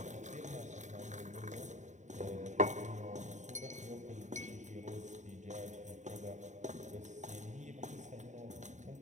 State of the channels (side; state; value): left; late; 0.35 ms